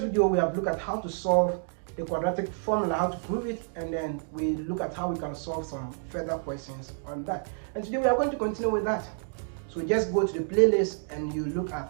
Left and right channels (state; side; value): silent; left; digital silence